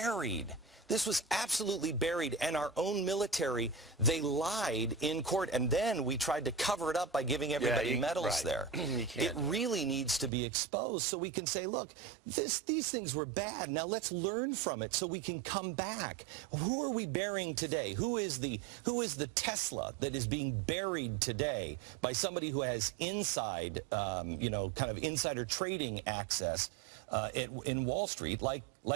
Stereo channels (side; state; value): left; drops out; at 10.3 s